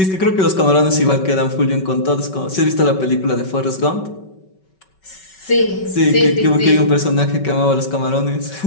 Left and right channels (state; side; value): late; right; 5.3 ms